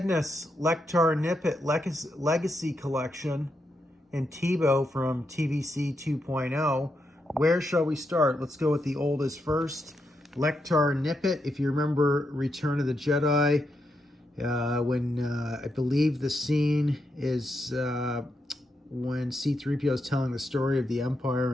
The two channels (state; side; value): normal; both; correlation 0.83